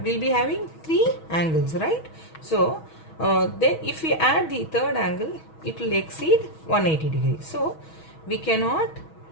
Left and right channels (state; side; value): late; right; 6.3 ms